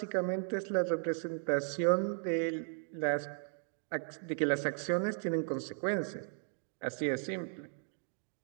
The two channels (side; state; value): left; silent; 54 dB below the other